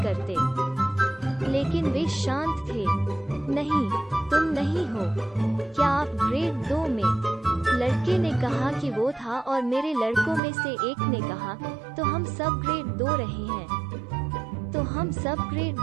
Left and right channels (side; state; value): left; drops out; at 10.4 s